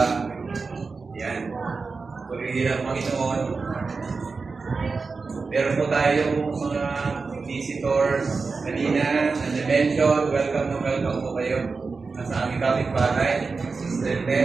Yan. Purihin ang Panginoon. Meron po tayong mga visitors kanina na na-mention. Welcome po kayo sa aming kapitbahay. Sister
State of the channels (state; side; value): quieter; left; 4.4 dB